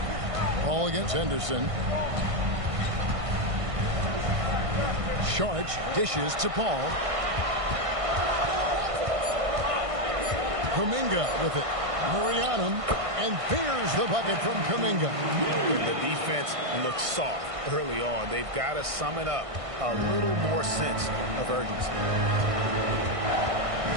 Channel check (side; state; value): left; late; 1.6 ms